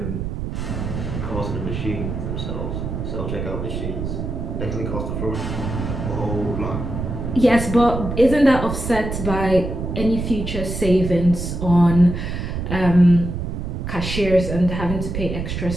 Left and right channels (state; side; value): noise; right; rumble, 4 dB below the sound